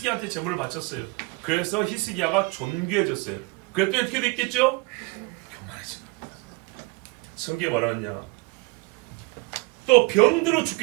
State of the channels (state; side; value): quieter; left; 26.3 dB